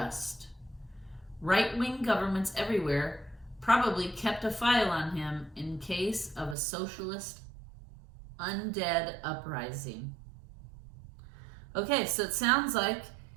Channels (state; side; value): drops out; left; at 6.6 s